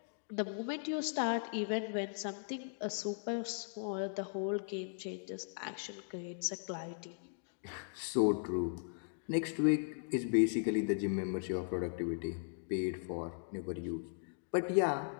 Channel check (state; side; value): silent; right; digital silence